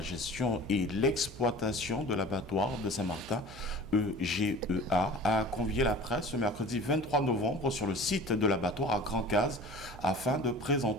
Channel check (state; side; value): noise; right; hum, 16 dB below the sound